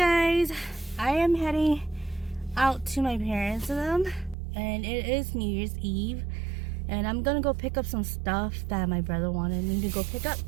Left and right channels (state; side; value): drops out; left; at 4.4 s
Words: I am heading out to my parents' and it is New Year's Eve, and I'm gonna go pick up some stuff that my brother wanted me to go pick up.